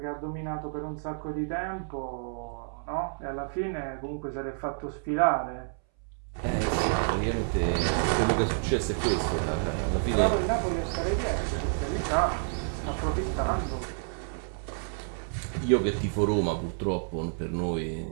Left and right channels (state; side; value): silent; left; 58 dB below the other